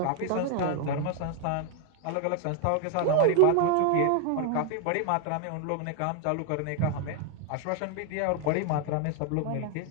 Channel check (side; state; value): both; different; correlation 0.01